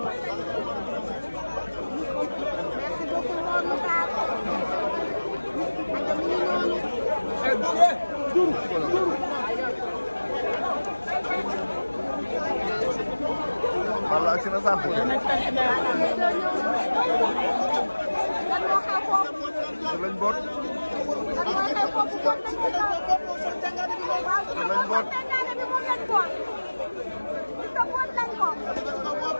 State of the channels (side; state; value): both; inverted; correlation -1.00